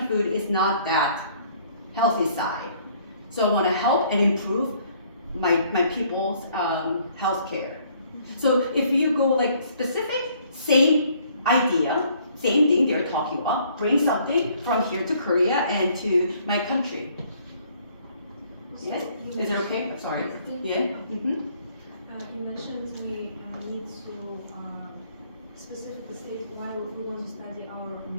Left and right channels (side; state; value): both; inverted; correlation -0.62